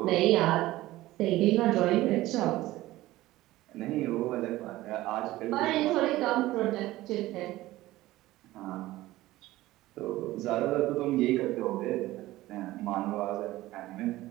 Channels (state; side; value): quieter; left; 16.9 dB